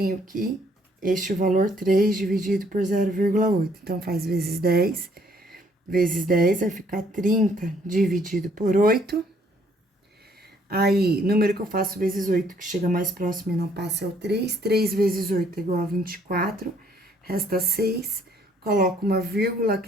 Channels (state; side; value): normal; both; correlation 0.64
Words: que este valor 3 dividido por 0,8. Então, faz vezes 10. Vezes 10 vai ficar 30 dividido por 8. Aí, número que eu faço vezes 8, que chega mais próximo e não passa, é o 3. 3 vezes 8 é igual a 24. Resta 6. Coloco uma vírgula,